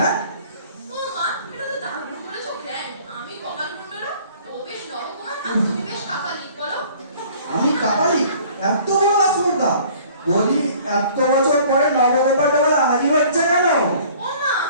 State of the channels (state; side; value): inverted; both; correlation -0.52